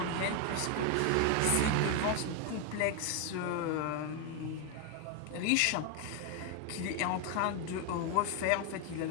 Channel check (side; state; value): both; different; correlation 0.01